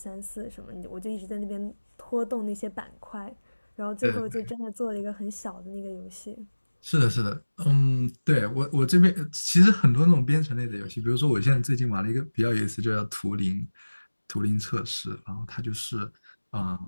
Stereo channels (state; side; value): inverted; both; correlation -1.00